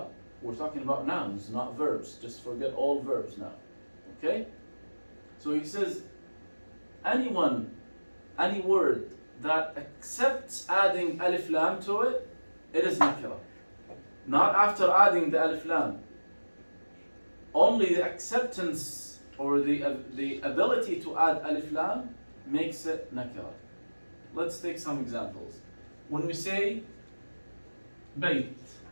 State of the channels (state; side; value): inverted; both; correlation -1.00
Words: we're talking about nouns, not verbs. Just forget all verbs now, okay? So he says, any word that accepts adding alif lam to it, it is nakira. Not after adding the alif lam. Only the acceptance or the ability to add alif lam makes it nakira. Let's take some examples. When we say bayt,